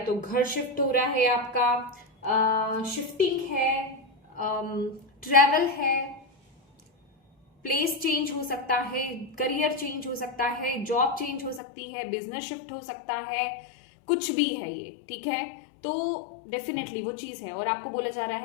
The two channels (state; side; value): drops out; right; at 11.6 s